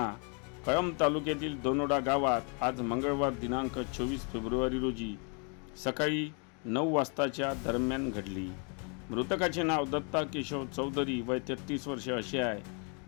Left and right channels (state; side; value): quieter; right; 37.3 dB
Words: कळंब तालुक्यातील दोनोडा गावात आज मंगळवार दिनांक 24 फेब्रुवारी रोजी सकाळी 9 वाजताच्या दरम्यान घडली। मृतकाचे नाव दत्ता केशव चौधरी वय 33 वर्ष असे आहे।